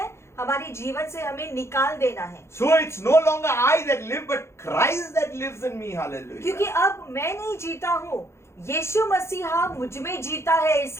हमारे जीवन से हमें निकाल देना है। So it's no longer I that live, but Christ that lives in me. Hallelujah. क्योंकि अब मैं नहीं जीता हूँ, यीशु मसीहा मुझ में जीता है,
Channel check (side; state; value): right; late; 0.13 ms